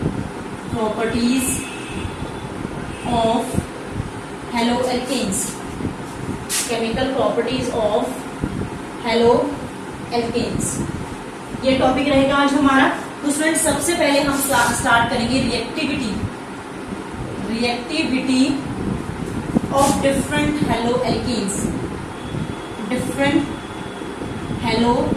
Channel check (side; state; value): both; identical; correlation 1.00